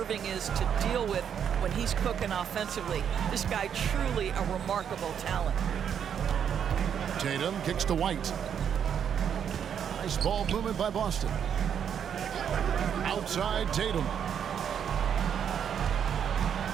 is to deal with when he's cooking offensively. This guy truly a remarkable talent. Tatum kicks to White. Nice ball movement by Boston. Outside Tatum.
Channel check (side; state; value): left; quieter; 8.3 dB